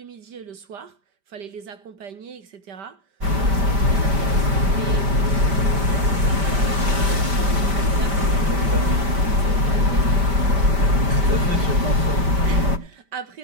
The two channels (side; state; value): left; late; 5.1 ms